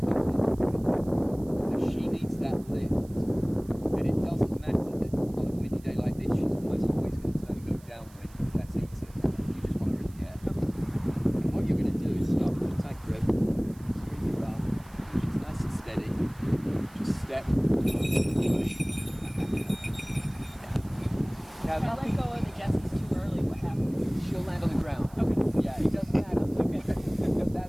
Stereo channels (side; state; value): right; noise; hiss, 26 dB below the sound